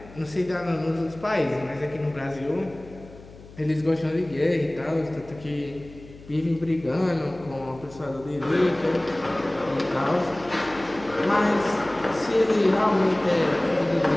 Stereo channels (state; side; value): noise; left; hum, 20 dB below the sound